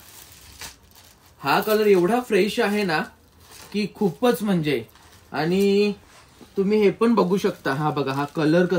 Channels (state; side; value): identical; both; correlation 1.00